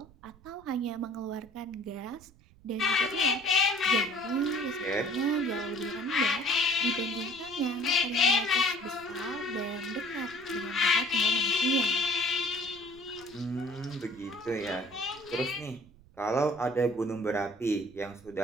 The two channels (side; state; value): right; noise; rumble, 25 dB below the sound